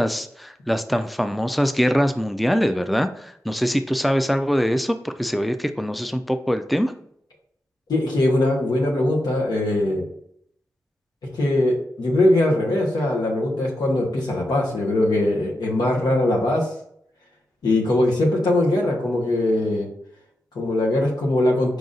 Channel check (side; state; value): both; normal; correlation 0.88